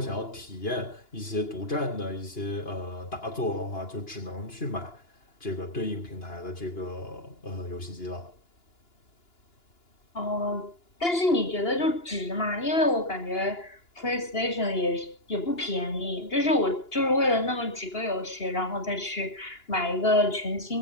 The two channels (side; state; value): right; late; 2.9 ms